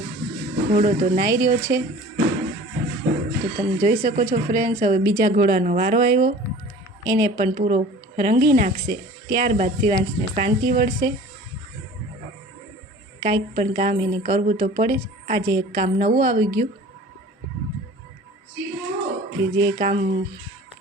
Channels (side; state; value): both; normal; correlation 0.43